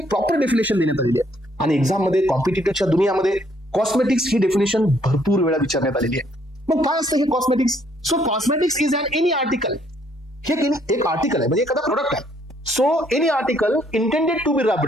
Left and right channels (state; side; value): normal; both; correlation 0.67